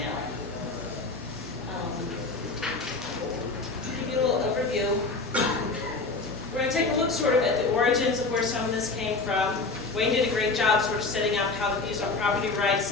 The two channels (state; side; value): quieter; right; 3.8 dB